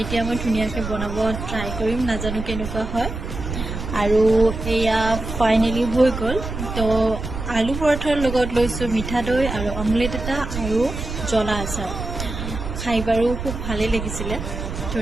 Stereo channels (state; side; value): noise; right; rumble, 6 dB below the sound